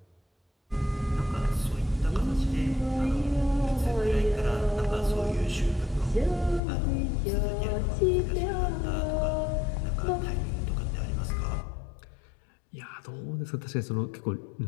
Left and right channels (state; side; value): drops out; right; at 6.6 s